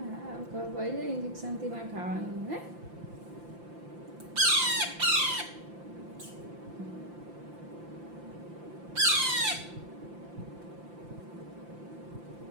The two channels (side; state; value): left; late; 5.8 ms